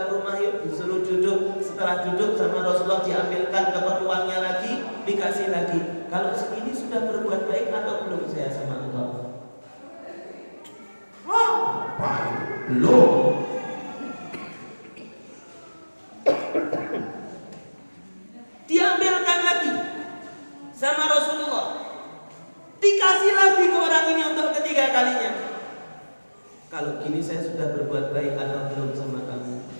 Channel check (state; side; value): inverted; both; correlation -1.00